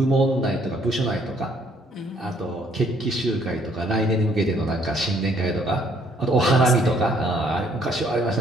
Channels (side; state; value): both; normal; correlation 0.64